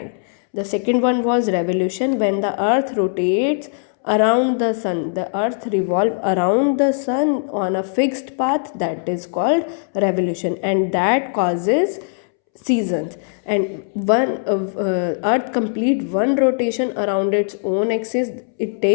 The second one was revolution, when the Earth rotates around the sun. The earth revolve around the sun on a fixed path, that is called revolution, and that causes seasons. And one earth complete one rotation around its own axis, it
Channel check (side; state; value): right; silent; 66 dB below the other